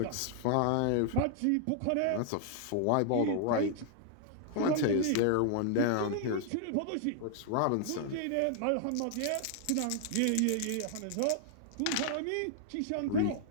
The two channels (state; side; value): different; both; correlation -0.01